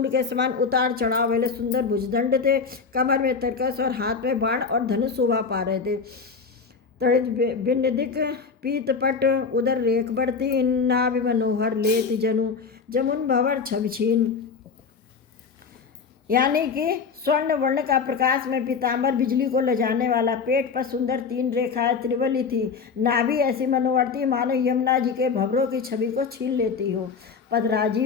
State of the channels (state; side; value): quieter; right; 5.4 dB